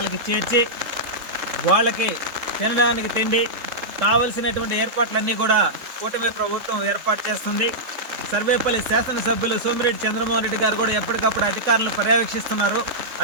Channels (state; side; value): late; left; 3.6 ms